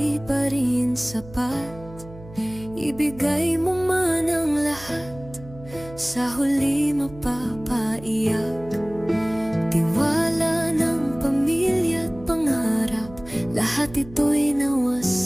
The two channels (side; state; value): right; noise; hum, 18 dB below the sound